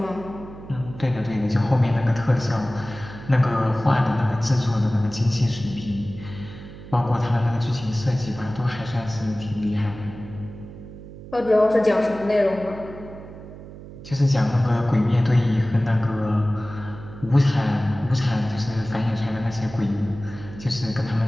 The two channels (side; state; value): right; noise; hum, 15 dB below the sound